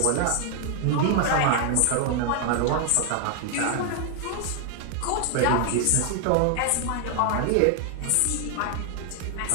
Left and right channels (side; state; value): both; different; correlation 0.00